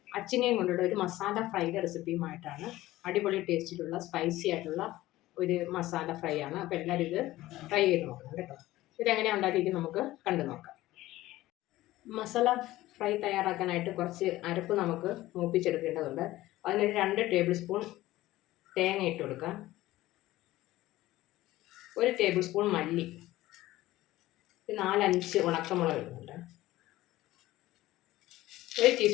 അച്ചിങ്ങയും കൊണ്ടുള്ള ഒരു മസാല ഫ്രൈയുടെ റെസിപ്പിയുമായിട്ടാണ്. അടിപൊളി ടേസ്റ്റിലുള്ള സ്പൈസി ആയിട്ടുള്ള ഒരു മസാല ഫ്രൈ ആണ്. അപ്പോൾ എല്ലാവരും ഇത് ട്രൈ ചെയ്ത് നോക്കണം കേട്ടോ. ഇതെങ്ങനെയാണ് ഉണ്ടാക്കിയിരിക്കുന്നത് നമുക്ക് കണ്ടു നോക്കാം. മസാല ഫ്രൈ തയ്യാറാക്കാനായിട്ട് കുറച്ച് അരപ്പ് നമുക്ക് മൂപ്പിച്ചെടുക്കേണ്ടതുണ്ട്. അതിനൊരു 2 ടേബിൾ സ്പൂൺ തേങ്ങ ഇട്ട് കൊടുക്കാം, 1 ടേബിൾ സ്പൂൺ മല്ലി, 4-5 ഉണക്കമുളക് ഇടുന്നുണ്ട്, 1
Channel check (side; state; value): right; quieter; 16.6 dB